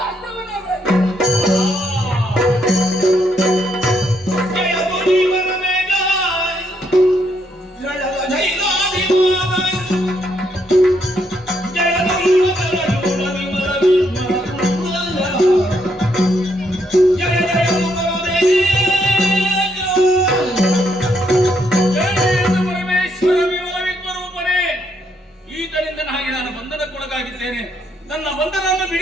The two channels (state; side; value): normal; both; correlation 0.75